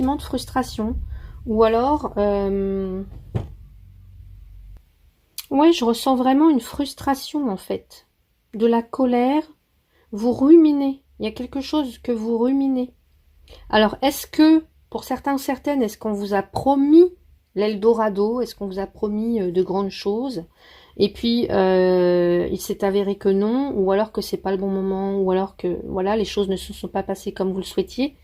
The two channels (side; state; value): both; identical; correlation 1.00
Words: de frustration. Ou alors, ouais, je ressens vraiment une frustration, en fait. De la colère, vous ruminez. Il y a quelque chose que vous ruminez. Alors, est-ce que Pour certains, certaines, est-ce qu'on vous a promis l'Eldorado? Est-ce qu'on vous a promis de grandes choses? Et puis, il s'est avéré que non, ou alors que c'est pas le bon moment, ou alors que voilà, les choses ne se sont pas passées comme vous le souhaitiez.